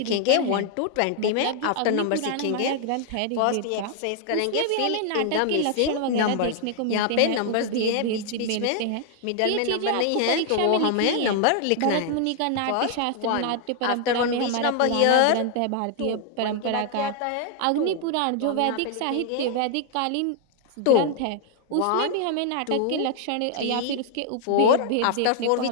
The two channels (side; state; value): both; different; correlation 0.00